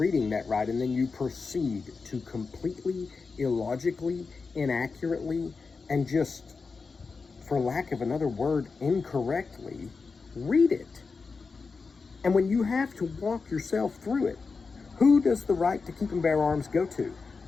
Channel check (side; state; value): right; quieter; 4.6 dB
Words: that right, and then you proceed to completely illogically, inaccurately, and just, for lack of another word, incorrectly read it. And when you have to walk yourself through it, who does the right to keep and bear arms go to?